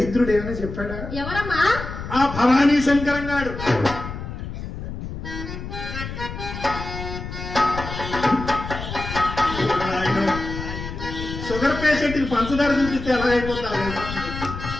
ఏమైనా చెప్పాడా? ఎవరమ్మా? ఆ భవానీ శంకరంగాడు. షుగర్ పేషెంట్ కి పంచదార చూపిస్తే ఎలా అయిపోతారు?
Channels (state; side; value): noise; left; rumble, 8 dB below the sound